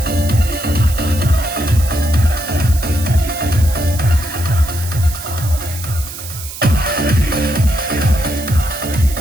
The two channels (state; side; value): noise; right; hiss, 11 dB below the sound